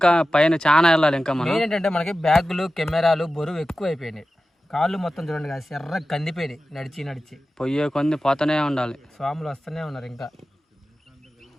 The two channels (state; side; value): normal; both; correlation 0.94